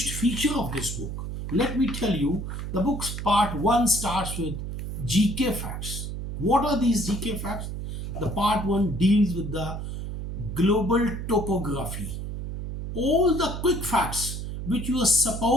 feature of this book, let me tell you, the book's part 1 starts with GK facts. What are these GK facts? The part 1 deals with the global topography. All the quick facts which you are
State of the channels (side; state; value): right; noise; hum, 6 dB below the sound